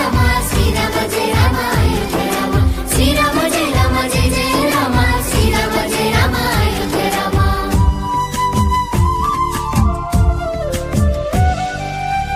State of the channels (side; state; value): both; identical; correlation 1.00